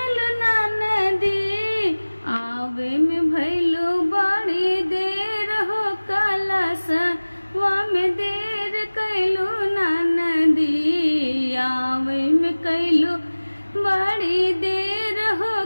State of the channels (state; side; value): inverted; both; correlation -1.00